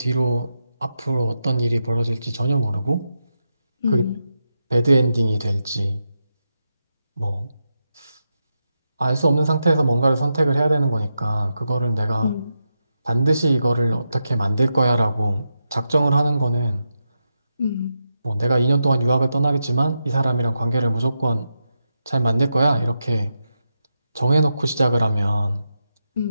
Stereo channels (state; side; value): inverted; both; correlation -0.87